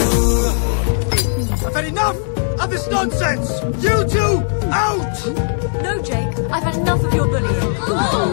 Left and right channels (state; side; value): silent; right; 59 dB below the other